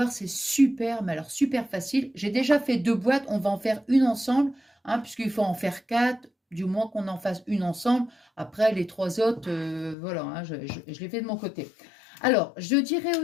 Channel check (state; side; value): drops out; right; at 10.0 s